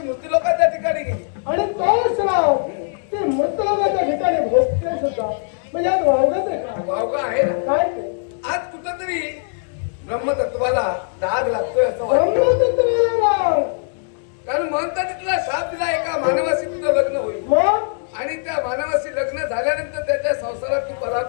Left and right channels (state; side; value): silent; right; digital silence